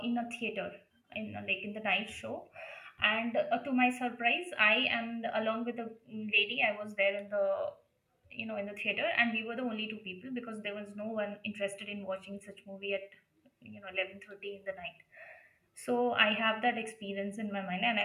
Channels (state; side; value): identical; both; correlation 1.00